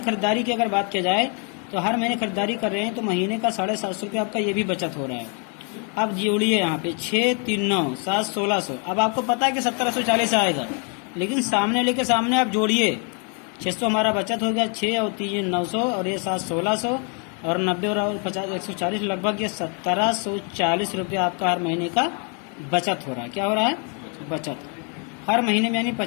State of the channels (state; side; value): quieter; right; 38.4 dB